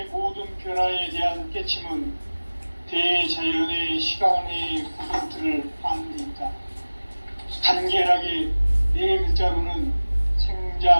모든 변화에 대한 깨침은 대자연의 시간의 구성틀을 아는 데 있다. 간결하게 네 글자로는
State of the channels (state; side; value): inverted; both; correlation -1.00